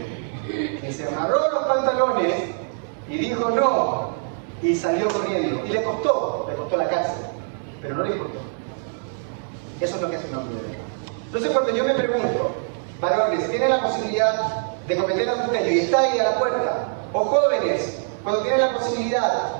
que se amarró los pantalones y dijo no, y salió corriendo. Y le costó la cárcel, pero no le importó. Eso es lo que hace un hombre de verdad. Entonces cuando yo me pregunto, varones, ¿tienen la posibilidad de cometer adulterio y está ahí a la puerta? O jóvenes, cuando tienen la posibilidad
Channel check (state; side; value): silent; left; digital silence